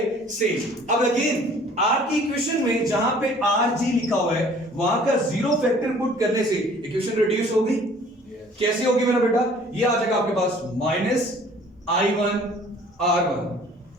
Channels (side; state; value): both; normal; correlation 0.53